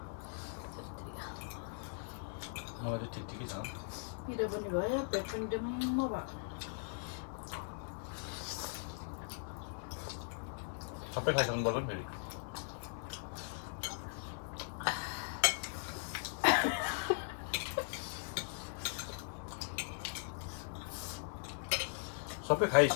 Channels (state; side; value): silent; right; 51 dB below the other